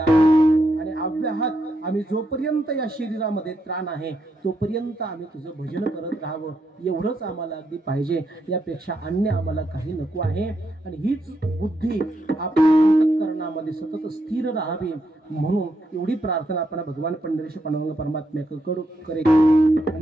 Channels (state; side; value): normal; both; correlation 0.80